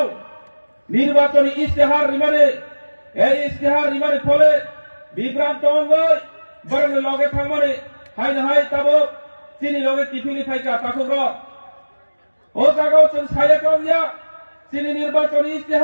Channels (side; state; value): both; inverted; correlation -1.00